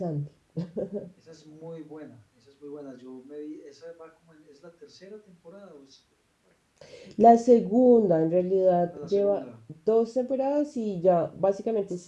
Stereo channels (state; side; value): identical; both; correlation 1.00